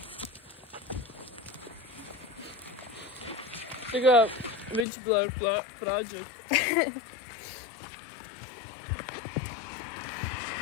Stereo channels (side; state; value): right; drops out; at 4.9 s